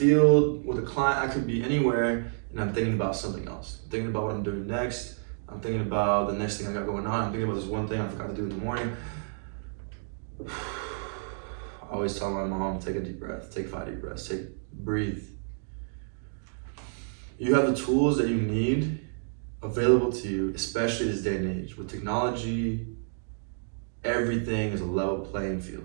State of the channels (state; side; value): silent; left; digital silence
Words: with a client, I could be anywhere, and I'm thinking about something else. I'm thinking about what I'm doing next. I'm thinking about the next thing I got going on. I'm thinking about this one thing I forgot to do in the morning. I always tell my mom, take a deep breath, take 5 deep breaths, breathe. You have the tools that you need available to you, especially this day and age. With technology, everything is a level playing field.